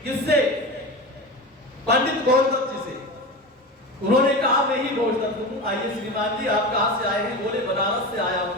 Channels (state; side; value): normal; both; correlation 0.26